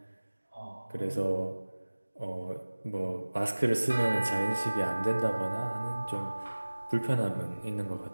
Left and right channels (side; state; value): both; inverted; correlation -1.00